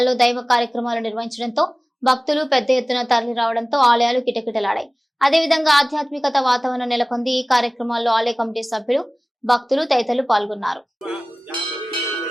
దైవ కార్యక్రమాలు నిర్వహించడంతో భక్తులు పెద్ద ఎత్తున తరలి రావడంతో ఆలయాలు కిటకిటలాడాయి. అదేవిధంగా ఆధ్యాత్మికత వాతావరణం నెలకొంది. ఈ కార్యక్రమాల్లో ఆలయ కమిటీ సభ్యులు, భక్తులు తదితరులు పాల్గొన్నారు.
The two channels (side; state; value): both; normal; correlation 0.98